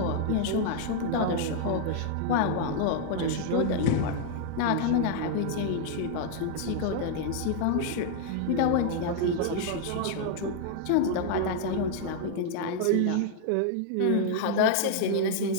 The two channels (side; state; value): both; different; correlation 0.00